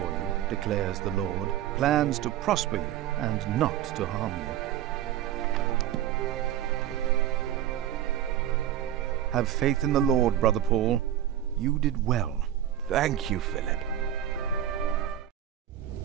you, declares the Lord, plans to prosper you and not to harm you. Have faith in the Lord, Brother Paul. You did well. Thank you, Philip.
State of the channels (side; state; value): left; quieter; 11.1 dB